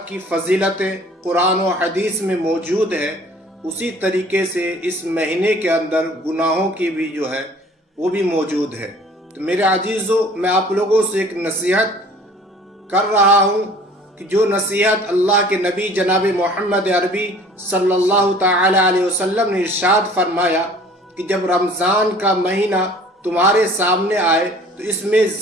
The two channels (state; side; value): normal; both; correlation 0.50